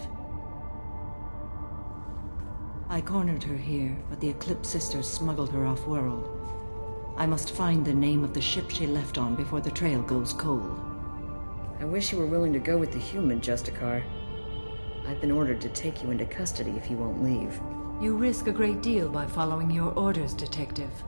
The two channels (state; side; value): inverted; both; correlation -1.00